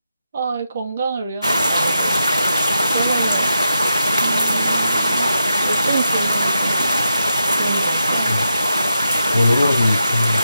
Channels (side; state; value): both; inverted; correlation -0.85